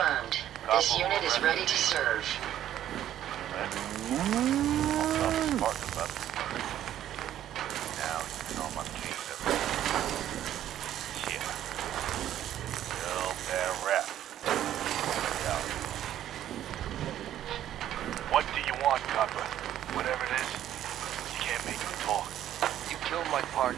This unit is ready to serve. Now, you know my case everywhere. Yeah. Real bad rap. Yeah. What do you want, copper? Whatever it is, you can't make me talk. You killed my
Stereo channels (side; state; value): left; quieter; 11.7 dB